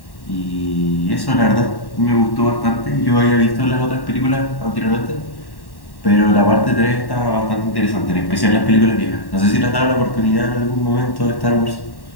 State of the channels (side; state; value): right; late; 1.1 ms